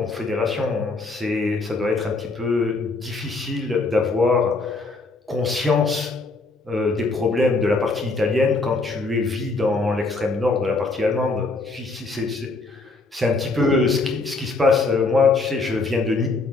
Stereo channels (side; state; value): right; quieter; 3.5 dB